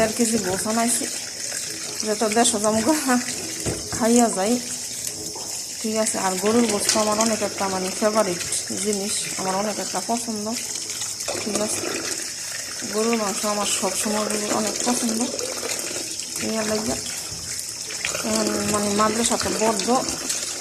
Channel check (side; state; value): both; identical; correlation 1.00